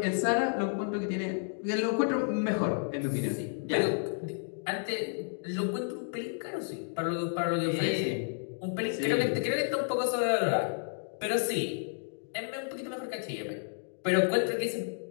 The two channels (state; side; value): silent; right; digital silence